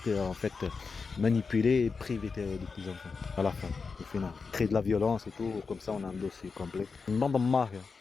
te manipuler et priver de tes enfants. À la fin, au final. Créer de la violence et tout, comme ça on a un dossier complet. Une bande de mafia.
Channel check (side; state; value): right; quieter; 4.9 dB